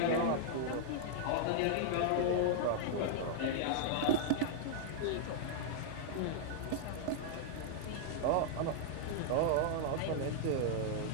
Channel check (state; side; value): different; both; correlation -0.01